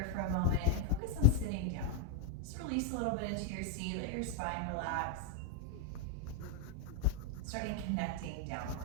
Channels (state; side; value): different; both; correlation 0.00